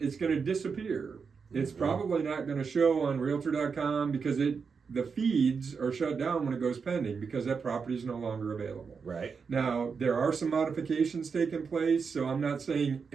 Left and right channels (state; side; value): quieter; left; 5.6 dB